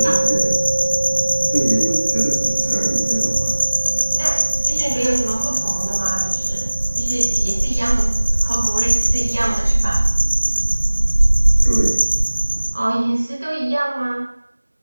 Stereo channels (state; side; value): inverted; both; correlation -1.00